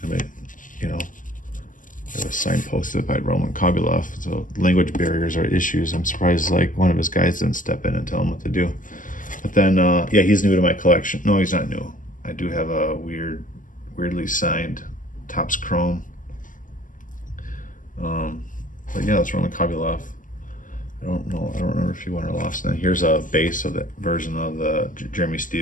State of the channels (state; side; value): late; right; 0.38 ms